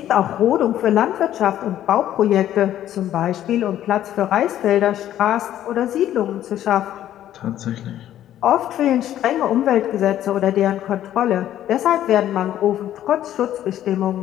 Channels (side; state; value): right; quieter; 12.0 dB